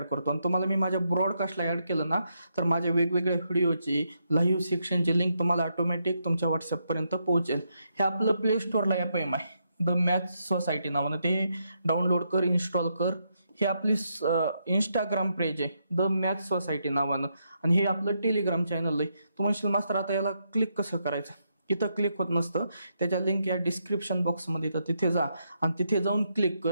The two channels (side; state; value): both; inverted; correlation -0.80